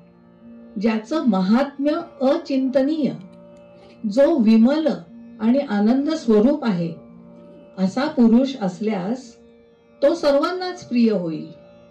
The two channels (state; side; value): identical; both; correlation 1.00